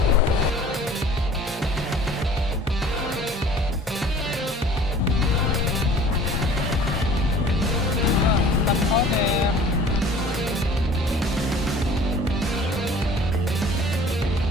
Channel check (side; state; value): both; normal; correlation 0.49